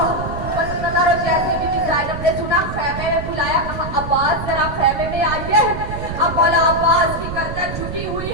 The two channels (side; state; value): right; noise; rumble, 7 dB below the sound